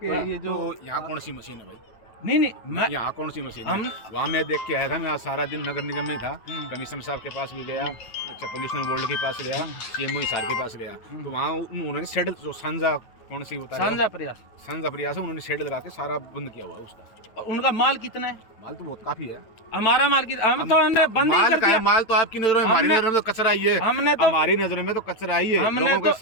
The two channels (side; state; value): right; late; 8.9 ms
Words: ये जो तो यहाँ कौन सी मशीन है भाई? नहीं मैं यहाँ कौन सी मशीन है? वहाँ मैं देख के आया था, मैं आज सारा दिन नगर निगम में था, कमिश्नर साहब के पास भी गया, अच्छा पोल्यूशन बोर्ड के पास गया, CMO हिसार के पास गया, तो वहाँ उन्होंने शेड जो सांझा कौन सी होता है, सांझा प्रयास है, उन्होंने शेड लगा के सारा बंद किया हुआ है उसका। उनका माल कितना है? माल तो बहुत काफी है। हमारा माल हम तो हमने बंद ही कर दिया। माल तो आपकी नजरों में, हमारी नजरों में तो कचरा ही है। हमने तो हमारी नजरों में तो कचरा ही है। लोगों के